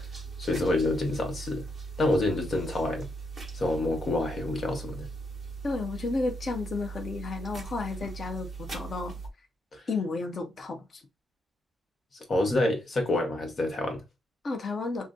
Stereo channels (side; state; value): both; normal; correlation 0.79